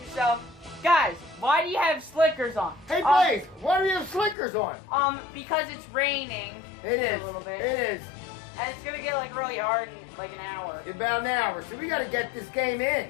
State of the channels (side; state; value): right; drops out; at 4.4 s